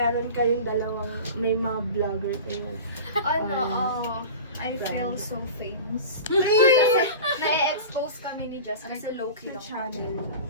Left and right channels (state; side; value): inverted; both; correlation -0.33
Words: kayong dalawang may mga vlogger kayo? I feel so famous. Kasi na-expose kami ni Jess kasi low-key lang Channel.